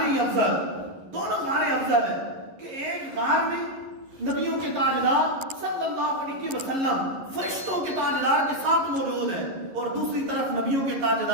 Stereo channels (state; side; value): late; left; 11 ms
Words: افضل، دونوں غاریں افضل ہیں، کہ ایک غار میں نبیوں کے تاجدار صلی اللہ علیہ وسلم فرشتوں کے تاجدار کے ساتھ موجود ہیں، اور دوسری طرف نبیوں کے